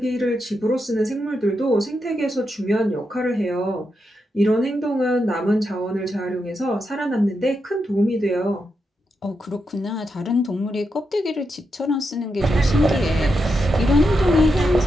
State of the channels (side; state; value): both; normal; correlation 0.85